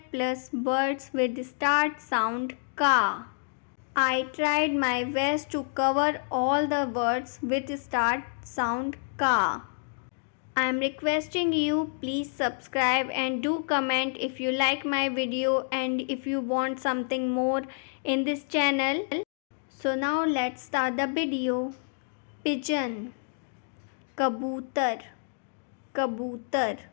plus words with the start sound ka. I tried my best to cover all the words with start sound ka. I am requesting you please subscribe and do comment if you like my video and if you want something more in this channel. So now let's start the video. Pigeon, kabutar, kabutar,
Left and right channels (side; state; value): right; silent; digital silence